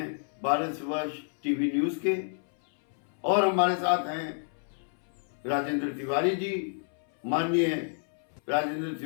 भारतवर्ष टीवी न्यूज के, और हमारे साथ हैं राजेंद्र तिवारी जी, माननीय Rajendra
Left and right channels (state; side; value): silent; right; 58 dB below the other